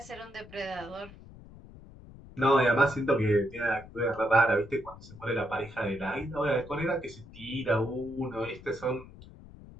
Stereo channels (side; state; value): left; noise; rumble, 19 dB below the sound